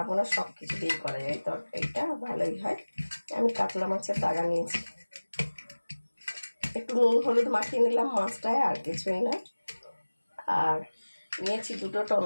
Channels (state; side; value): inverted; both; correlation -1.00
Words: সব কিছু দিয়ে করা যায় তরকারিটা, ভালোই হয়। আমি কাতলা মাছের দাগা নিয়েছি, একটু নুন হলুদ মাখিয়ে নিলাম মাছটায়, আর কিছুই না। আর নিয়েছি দুটো